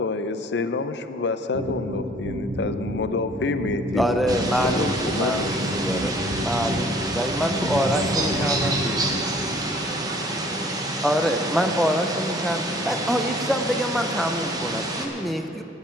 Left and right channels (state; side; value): normal; both; correlation 0.54